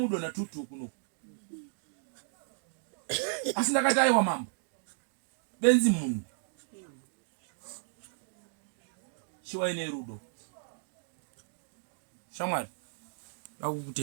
na tutu kuno. Asi ndakati aiwa mambo benzi munhu chiwaine rudo. Shamwari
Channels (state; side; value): silent; left; digital silence